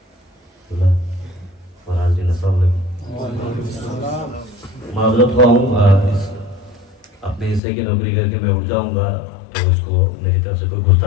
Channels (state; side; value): drops out; right; at 7.6 s